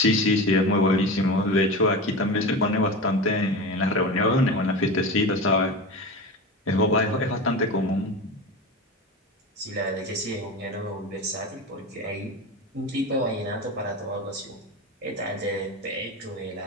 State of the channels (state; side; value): normal; both; correlation 0.26